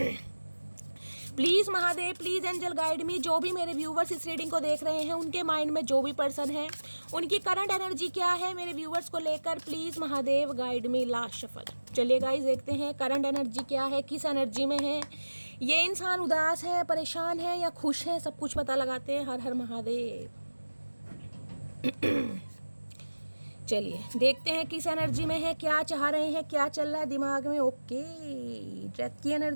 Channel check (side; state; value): both; inverted; correlation -1.00